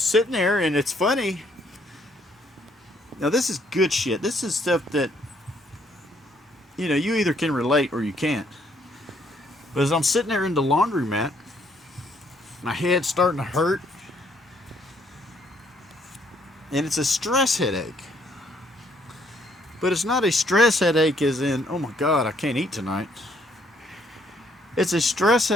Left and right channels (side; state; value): both; normal; correlation 0.68